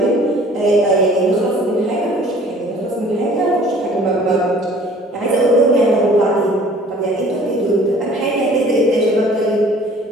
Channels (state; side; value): normal; both; correlation 0.51